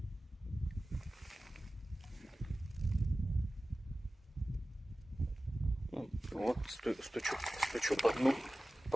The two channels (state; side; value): normal; both; correlation 0.96